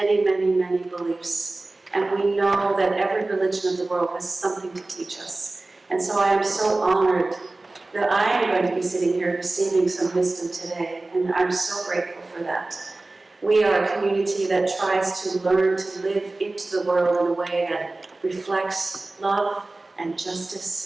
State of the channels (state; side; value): quieter; left; 3.1 dB